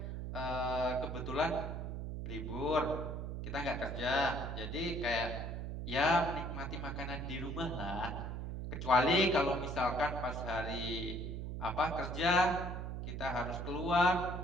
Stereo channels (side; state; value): right; noise; hum, 5 dB below the sound